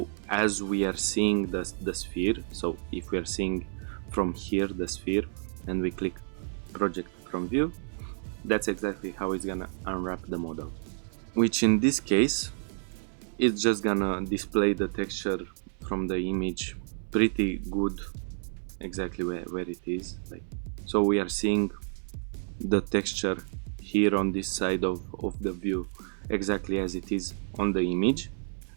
as we are seeing the sphere, so if we are seeing from here the sphere and we click project from view, that's exactly how it's gonna unwrap the model, which in this case it's just gonna display the texture from the image pretty good, exactly where it is. Like, so we are seeing the texture here on this side of the view exactly as it is on the image,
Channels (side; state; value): left; silent; 58 dB below the other